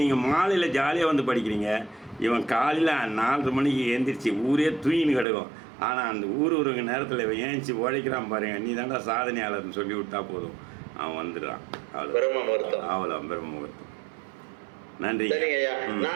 நீங்கள் மாலையில் ஜாலியாக வந்து படிக்கிறீங்க, இவன் காலையில் 4:30 மணிக்கு எழுந்திரிச்சு ஊரே தூயின்னு கிடக்கும். ஆனால் அந்த ஊருக்கு நேரத்தில் இவன் ஏஞ்சி உழைக்கிறான் பாருங்க, நீ தாண்டா சாதனையாளர்னு சொல்லி விட்டா போதும், அவன் வந்துடுறான். அவ்வளோ பிரம்ம முகூர்த்தம். நன்றி. சரிங்க ஐயா.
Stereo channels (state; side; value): drops out; left; at 5.2 s